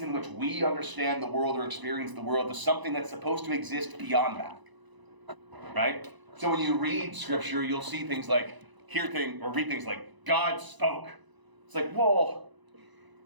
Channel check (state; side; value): late; left; 1.0 ms